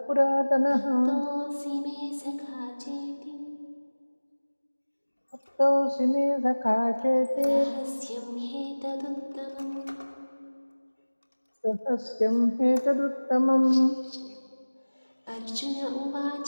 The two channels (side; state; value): both; inverted; correlation -1.00